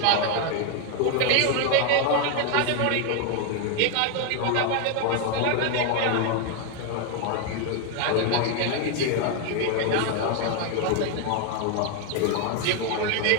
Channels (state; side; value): different; both; correlation 0.01